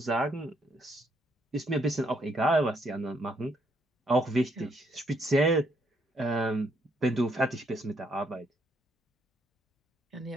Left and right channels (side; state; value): both; normal; correlation 0.72